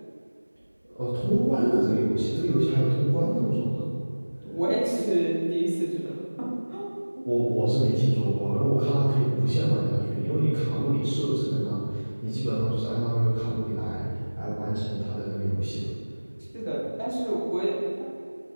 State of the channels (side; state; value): both; inverted; correlation -1.00